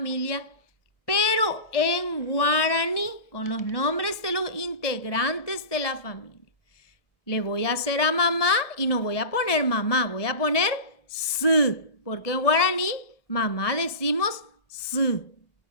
pero en guaraní, con los nombres de los integrantes de la familia. Le voy a hacer a mamá y no voy a poner mamá, voy a poner s, porque en guaraní mamá decimos s.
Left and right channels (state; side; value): late; right; 1.2 ms